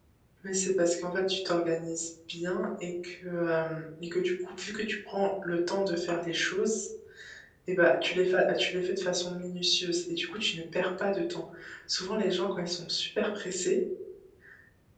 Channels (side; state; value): both; identical; correlation 1.00